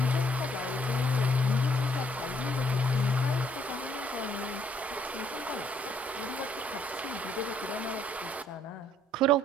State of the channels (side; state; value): both; normal; correlation 0.65